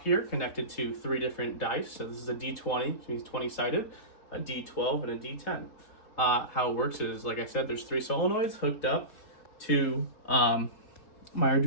connected to 3 different dice. So this is a D20, which means 20 sided, a D12, and a D10. How it works is, like I said, there's 3 solenoids hooked up to my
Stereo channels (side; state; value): right; late; 4.0 ms